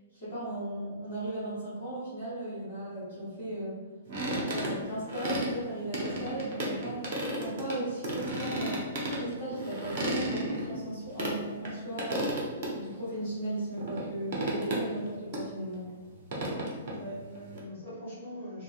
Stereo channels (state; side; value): inverted; both; correlation -0.38